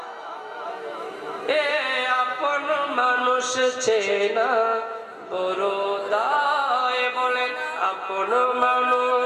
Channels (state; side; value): identical; both; correlation 1.00